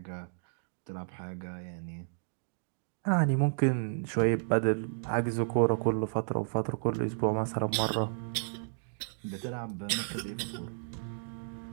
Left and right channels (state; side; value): silent; left; digital silence